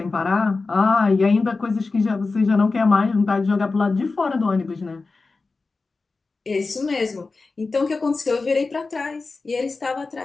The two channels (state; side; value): quieter; right; 3.9 dB